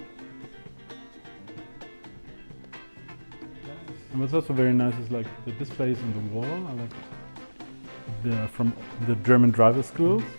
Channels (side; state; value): both; inverted; correlation -1.00